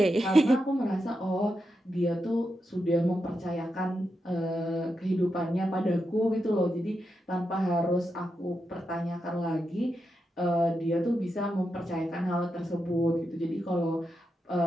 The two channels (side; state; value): both; normal; correlation 0.86